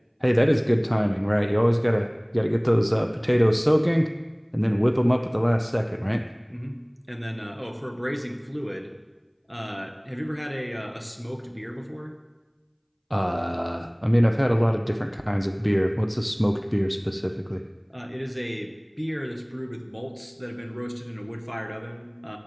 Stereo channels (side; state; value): both; identical; correlation 1.00